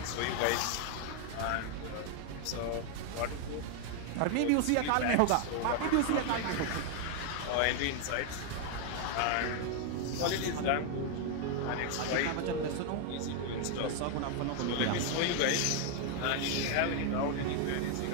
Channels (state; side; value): different; both; correlation 0.00